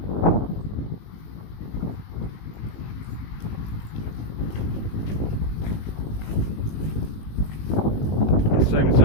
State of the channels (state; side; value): late; right; 19 ms